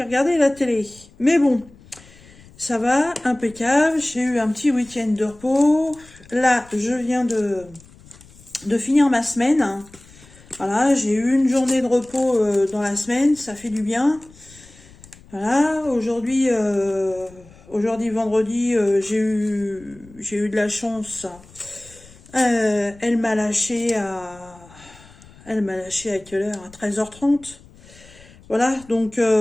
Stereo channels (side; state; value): left; noise; rumble, 24 dB below the sound